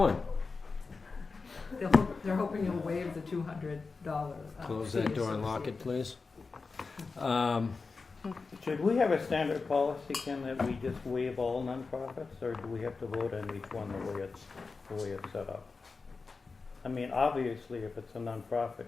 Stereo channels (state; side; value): quieter; right; 4.3 dB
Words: they're hoping you'll waive the $200. Close fee that door and lock it, associated. please. Should we have a standard policy, Ken, that we just waive all nonprofits, or do we have to vote on each one the way it's set up? I mean, obviously, if it's a nonprofit,